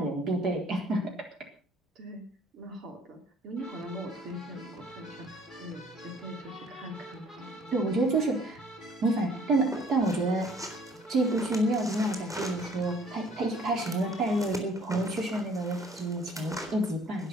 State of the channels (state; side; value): normal; both; correlation 0.56